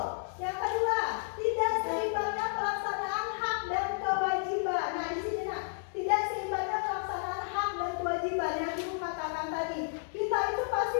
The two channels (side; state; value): right; silent; 56 dB below the other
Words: yang kedua, tidak seimbangnya pelaksanaan hak dan kewajiban. Nah di sini tidak seimbangnya pelaksanaan hak dan kewajiban yang ibu katakan tadi. Kita itu pasti